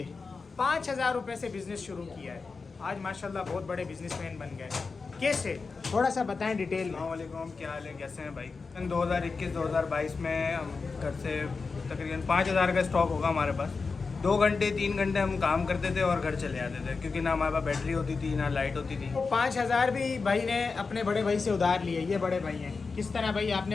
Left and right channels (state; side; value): quieter; right; 4.5 dB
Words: 5000 रुपये से बिजनेस शुरू किया है, आज माशाल्लाह बहुत बड़े बिजनेसमैन बन गए। कैसे, थोड़ा सा बताएं डिटेल में। अस्सलामुअलैकुम, क्या हाल है, कैसे हैं भाई? 2021-2022 में हम घर से तकरीबन 5000 का स्टॉक होगा हमारे पास। 2 घंटे 3 घंटे हम काम करते थे और घर चले आते थे, क्योंकि ना हमारे पास बैटरी होती थी ना लाइट होती थी। 5000 भी भाई ने अपने बड़े भाई से उधार लिए। ये बड़े भाई हैं। किस तरह भाई